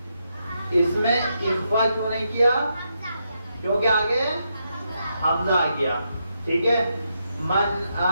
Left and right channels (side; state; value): both; inverted; correlation -0.82